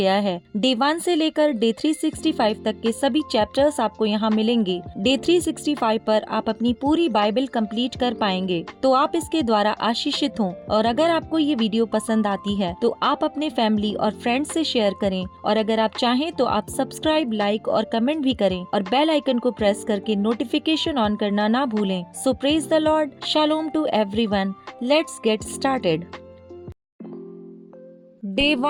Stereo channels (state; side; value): identical; both; correlation 1.00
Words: है। डे 1 से लेकर डे 365 तक के सभी चैप्टर्स आपको यहाँ मिलेंगे। डे 365 पर आप अपनी पूरी बाइबल कंप्लीट कर पाएंगे, तो आप इसके द्वारा आशीषित हों। और अगर आपको ये वीडियो पसंद आती है तो आप अपने फैमिली और फ्रेंड्स से शेयर करें, और अगर आप चाहें तो आप सब्सक्राइब, लाइक और कमेंट भी करें और बेल आइकन को प्रेस करके नोटिफिकेशन ऑन करना ना भूलें। So praise the Lord, shalom to everyone. Let's get started. Day